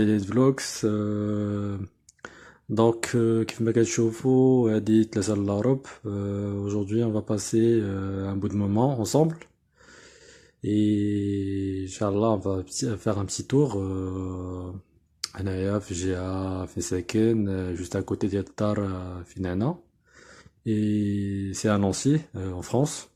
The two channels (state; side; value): identical; both; correlation 1.00